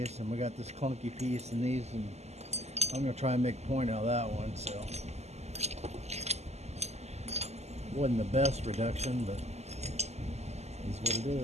and we got this clunky piece and these, and I'm going to try and make a point out of that one. So wasn't the best reduction, but it's what it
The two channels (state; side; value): late; left; 0.32 ms